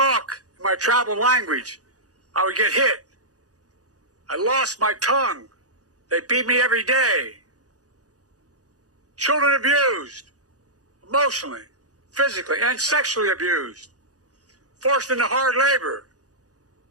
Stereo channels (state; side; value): late; left; 0.67 ms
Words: in my tribal language, I would get hit. I lost my tongue. They beat me every day. Children abused, emotionally, physically, and sexually abused. Forced into hard labor.